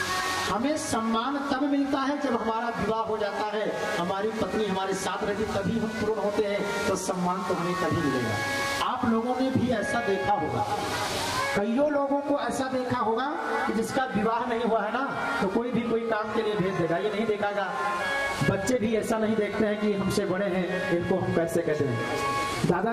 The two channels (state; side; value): identical; both; correlation 1.00